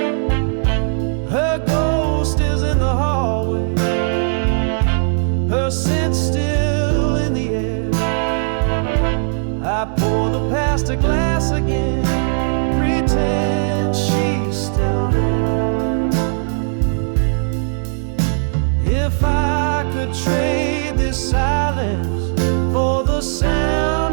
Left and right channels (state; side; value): silent; left; digital silence